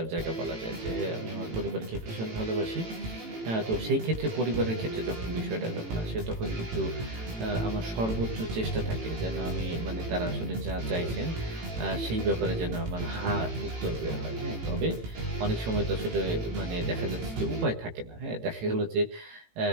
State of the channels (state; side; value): late; left; 18 ms